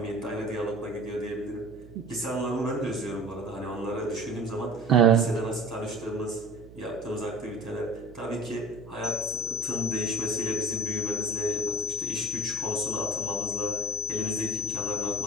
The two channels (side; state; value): right; noise; hum, 18 dB below the sound